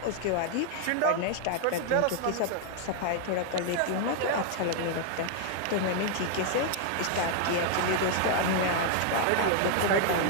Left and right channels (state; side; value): different; both; correlation 0.00